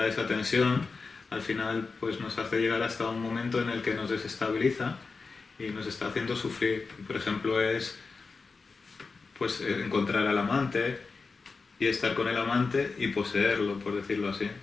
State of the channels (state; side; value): quieter; right; 4.4 dB